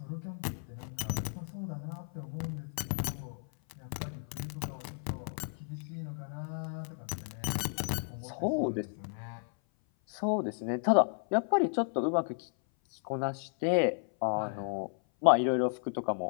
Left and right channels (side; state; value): right; silent; 56 dB below the other